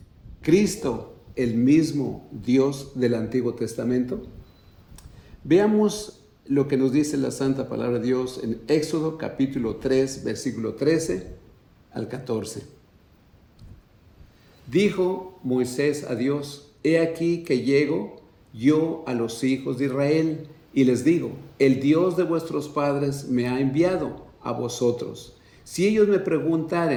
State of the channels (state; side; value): identical; both; correlation 1.00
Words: Cristo, el mismo Dios del Antiguo Testamento. Veamos lo que nos dice la Santa Palabra de Dios en Éxodo capítulo 3, versículo 13 al 14. Dijo Moisés a Dios: He aquí que llego yo a los hijos de Israel y les digo: el Dios de vuestros padres me ha enviado a vosotros. Si ellos me